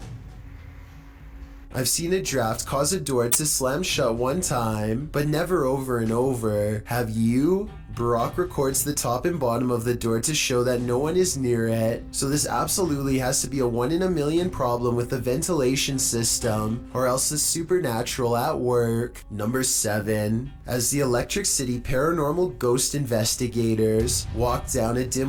I've seen a draft cause a door to slam shut one time, but never over and over. Have you? Barack records the top and bottom of the door to show that no one is near it, so this absolutely has to be a 1 in a million problem with the ventilation system, or else it's supernatural at work. Number 7. As the Electric City paranormal ghost investigators walk down a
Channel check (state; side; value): identical; both; correlation 1.00